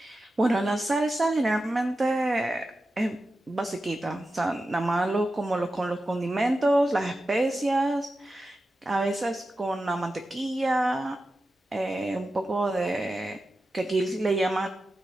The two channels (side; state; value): both; normal; correlation 0.92